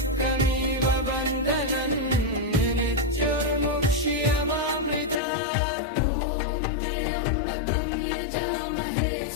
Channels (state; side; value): drops out; right; at 5.2 s